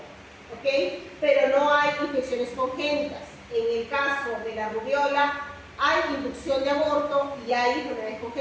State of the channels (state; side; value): identical; both; correlation 1.00